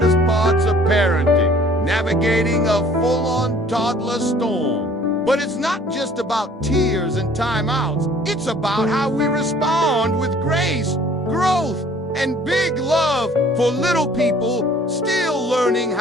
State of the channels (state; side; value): normal; both; correlation 0.54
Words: parts of parenting, navigating a full-on toddler storm. But it's not just about tears and timeouts. It's about how we respond with grace, growth, and big love for little people still learning